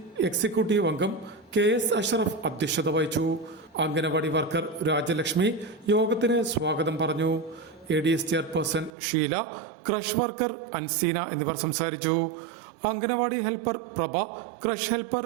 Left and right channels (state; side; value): drops out; left; at 8.9 s